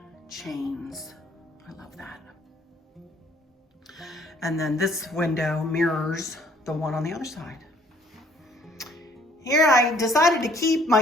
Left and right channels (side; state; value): both; normal; correlation 0.60